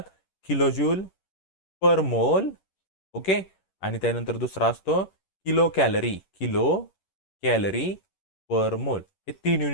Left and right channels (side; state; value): right; late; 11 ms